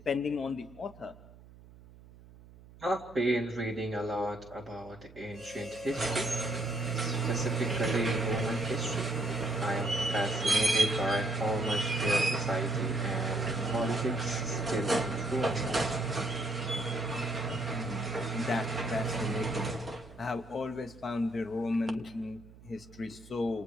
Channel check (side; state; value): right; noise; hum, 21 dB below the sound